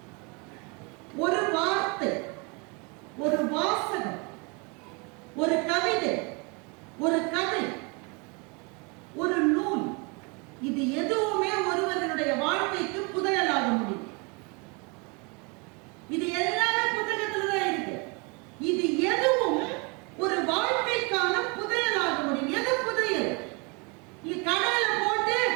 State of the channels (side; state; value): left; quieter; 31.0 dB